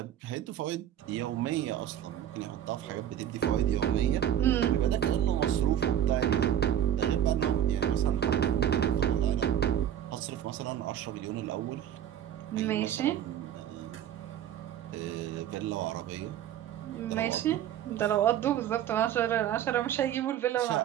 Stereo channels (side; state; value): left; quieter; 10.6 dB